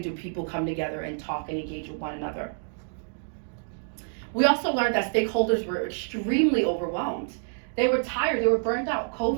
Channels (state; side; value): silent; left; digital silence